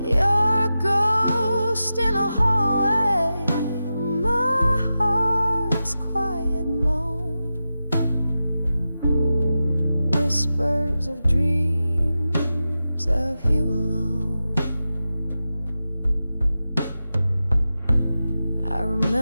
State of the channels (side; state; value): both; inverted; correlation -0.92